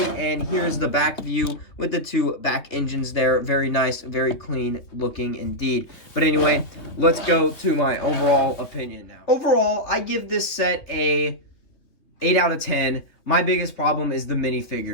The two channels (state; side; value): late; right; 3.1 ms